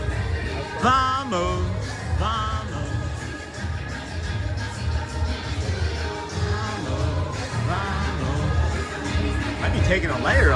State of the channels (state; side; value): identical; both; correlation 1.00